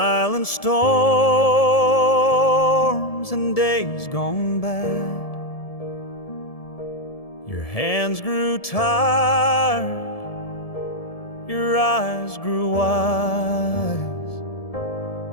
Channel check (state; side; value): late; right; 1.7 ms